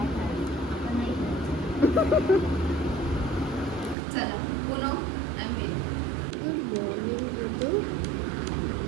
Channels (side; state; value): left; drops out; at 4.0 s